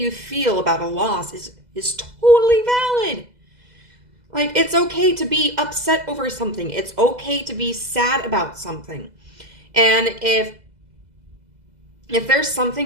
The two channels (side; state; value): left; late; 2.0 ms